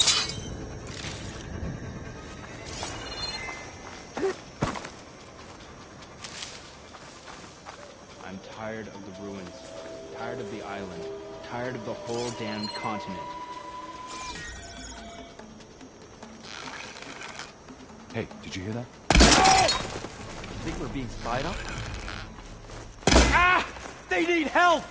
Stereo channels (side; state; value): both; identical; correlation 1.00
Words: I'm tired of the ruins, tired of the island, tired of the whole damned continent. Hey, did you hear that? Think we're being spied on? Ah! They need help!